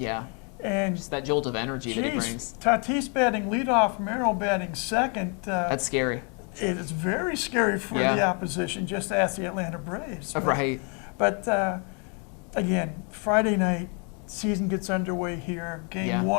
And Just that jolt of energy that he geez, brings. Tatis batting leadoff, Merrill batting second. That's scary. It is very scary for Yeah. the opposition. Just ask the Atlanta Braves. Right. But again, Friday night, season gets underway here. Game Yeah.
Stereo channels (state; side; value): quieter; right; 36.7 dB